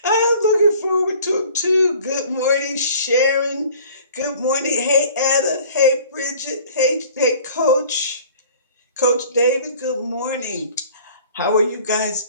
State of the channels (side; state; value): both; inverted; correlation -0.49